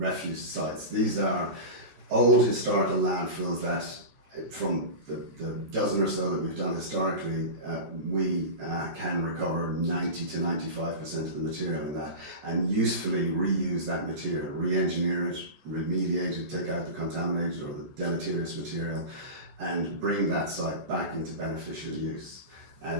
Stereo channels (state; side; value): late; left; 14 ms